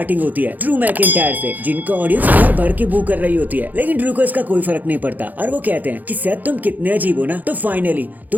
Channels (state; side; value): late; left; 0.082 ms